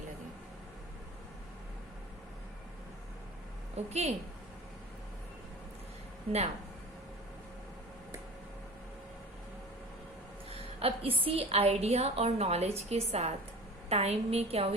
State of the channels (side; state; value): both; normal; correlation 0.37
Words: ओके, नाउ अब इसी आइडिया और नॉलेज के साथ टाइम में क्या